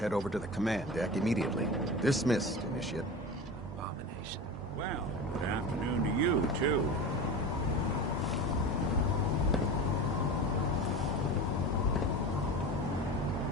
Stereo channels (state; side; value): normal; both; correlation 0.29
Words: over to the command deck immediately. Dismissed, Initiate. Abomination. Well, good afternoon to you, too.